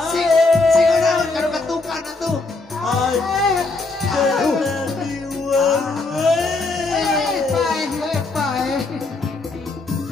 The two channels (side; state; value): right; quieter; 3.5 dB